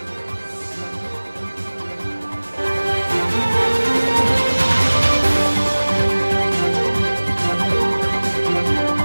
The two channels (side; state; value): both; inverted; correlation -1.00